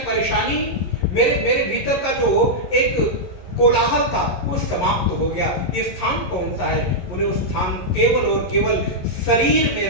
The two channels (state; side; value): late; right; 11 ms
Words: परेशानी, मेरे भीतर का जो एक कोलाहल था वो समाप्त हो गया। ये स्थान कौन सा है? बोले वो स्थान केवल और केवल शरीर में